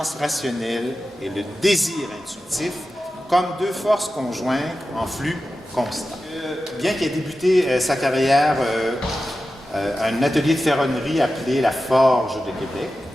rationnelle et le désir intuitif comme deux forces conjointes en flux constant. » Bien qu'il ait débuté sa carrière à un atelier de ferronnerie appelé la Forge de Québec,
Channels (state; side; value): normal; both; correlation 0.93